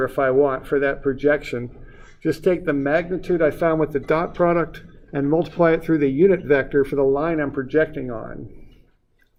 if I want for that projection. Just take the magnitude I found with the dot product and multiply it through the unit vector for the line I'm projecting on.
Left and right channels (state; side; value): identical; both; correlation 1.00